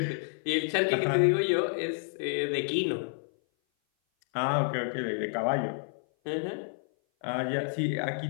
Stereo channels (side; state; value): right; silent; 56 dB below the other